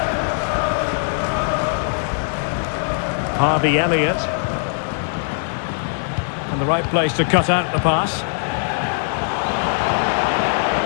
Harvey Elliott. And the right place to cut out the pass.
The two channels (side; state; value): right; silent; digital silence